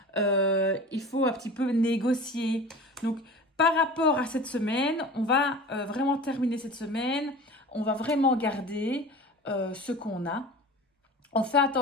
Il faut un petit peu négocier. Donc, par rapport à cette semaine, on va vraiment terminer cette semaine. On va vraiment garder ce qu'on a. On fait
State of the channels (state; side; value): normal; both; correlation 0.37